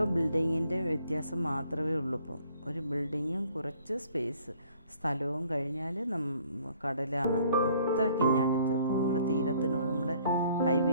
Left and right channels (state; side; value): inverted; both; correlation -0.59